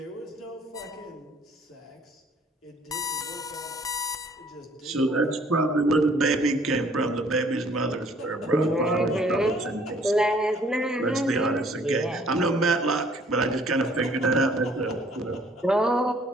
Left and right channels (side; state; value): both; normal; correlation 0.59